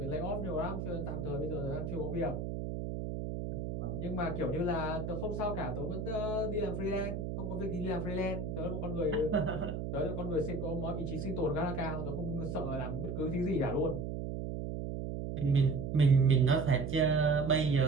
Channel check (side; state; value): right; noise; hum, 4 dB below the sound